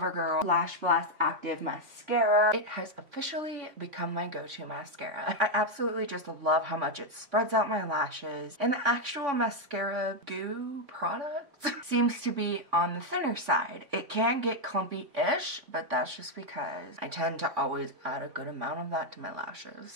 Lash Blast Active Mascara. It has officially become my go-to mascara. I absolutely just love how much it spreads out my lashes, and the actual mascara goo product seems to be on the thinner side. It can get clumpy-ish, but that's just because I tend to always add a good amount of that to my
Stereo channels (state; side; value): late; left; 3.5 ms